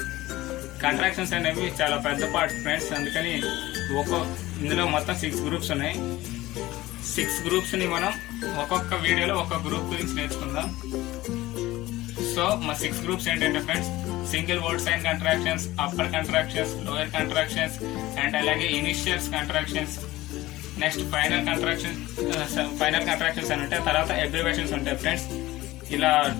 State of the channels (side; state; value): right; quieter; 17.6 dB